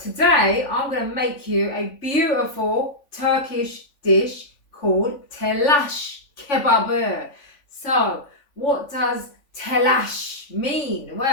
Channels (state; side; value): late; right; 3.5 ms